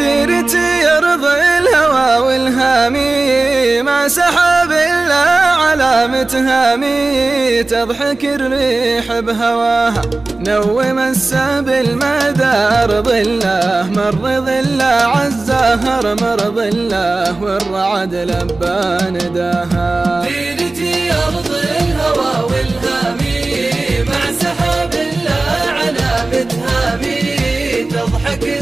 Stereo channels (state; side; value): quieter; left; 3.3 dB